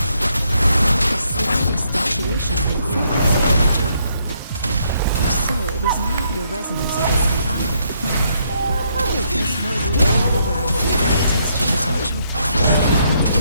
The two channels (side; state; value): both; inverted; correlation -0.73